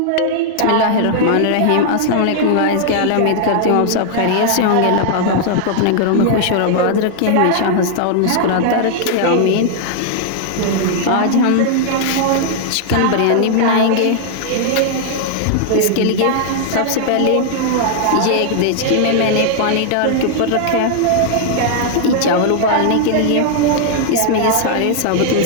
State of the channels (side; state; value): both; different; correlation -0.01